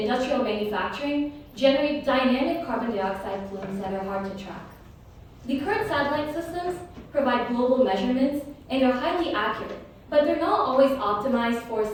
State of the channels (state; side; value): identical; both; correlation 1.00